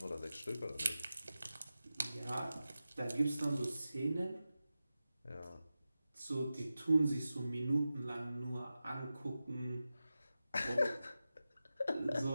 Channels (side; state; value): both; inverted; correlation -0.94